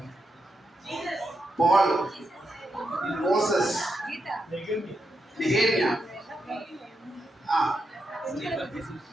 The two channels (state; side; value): normal; both; correlation 0.84